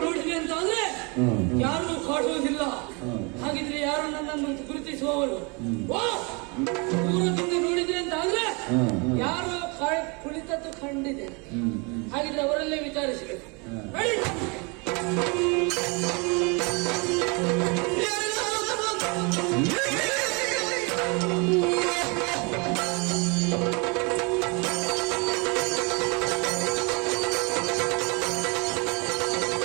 ನೋಡಿದೆ ಅಂತಾದ್ರೆ ಯಾರು ಕಾಡುವುದಿಲ್ಲ. ಹಾಗಿದ್ರೆ ಯಾರು ನನ್ನನ್ನು ಗುರುತಿಸುವವರು? ದೂರದಿಂದ ನೋಡಿದ್ರೆ ಅಂತಾದ್ರೆ ಯಾರು ಕುಳಿತದ್ದು ಕಂಡಿದೆ. ಹಾಗಿದ್ರೆ ಅವರಲ್ಲೇ ವಿಚಾರಿಸಬೇಕು.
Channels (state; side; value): quieter; left; 31.0 dB